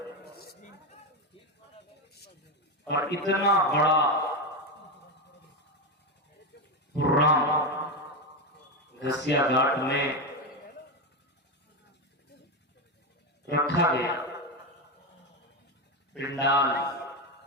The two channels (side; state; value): both; normal; correlation 0.13